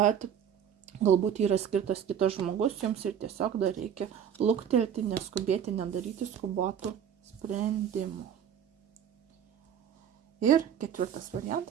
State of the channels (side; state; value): left; quieter; 8.8 dB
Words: galbūt yra skirtas kitas žmogus jums ir tiesiog dar reikia luktelti, neskubėti, nedaryti skubotų sprendimų. Ir ketvirtas